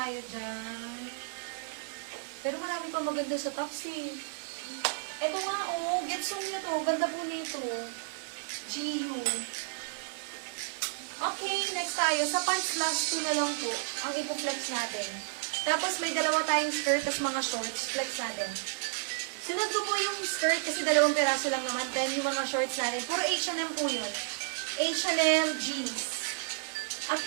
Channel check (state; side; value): silent; left; digital silence